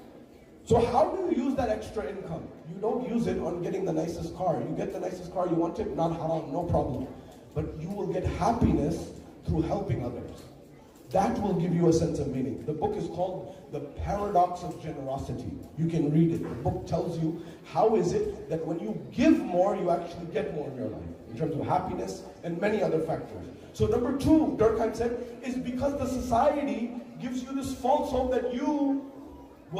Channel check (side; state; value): both; identical; correlation 1.00